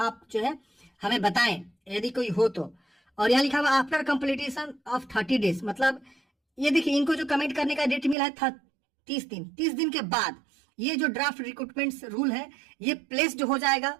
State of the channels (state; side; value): drops out; left; at 8.2 s